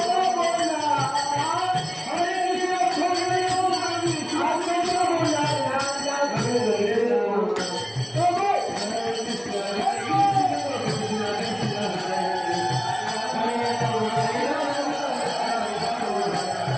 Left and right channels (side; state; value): both; identical; correlation 1.00